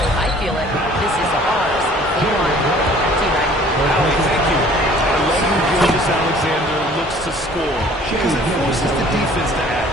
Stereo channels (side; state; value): both; normal; correlation 0.53